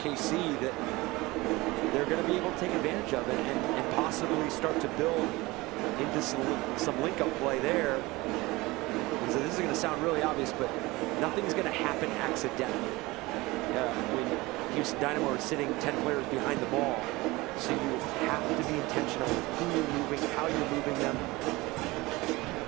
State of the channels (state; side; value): quieter; left; 21.4 dB